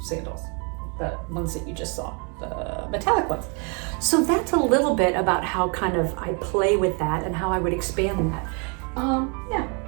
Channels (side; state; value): left; quieter; 35.0 dB